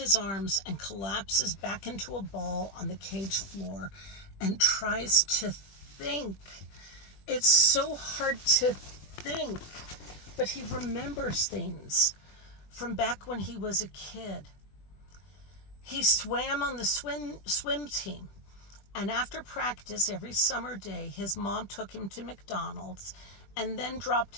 arms and collapses back into a ball on the cage floor and tries to think. It's so hard to think, but he remembers things from back when he was a kid. He swam on the swim team, and after practice every summer day, his mom took him to McDonald's and then dropped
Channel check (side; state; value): right; late; 20 ms